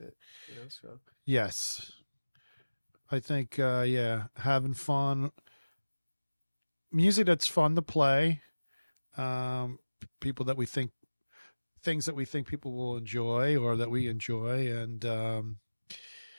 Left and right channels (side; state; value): both; inverted; correlation -1.00